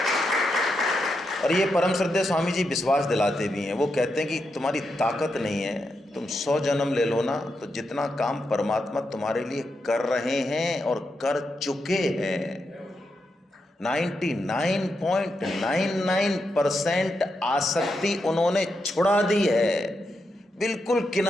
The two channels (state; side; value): normal; both; correlation 0.84